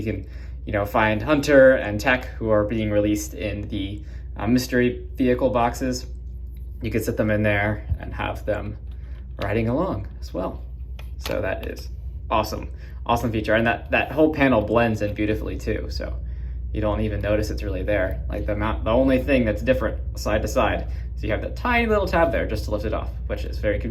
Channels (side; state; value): both; identical; correlation 1.00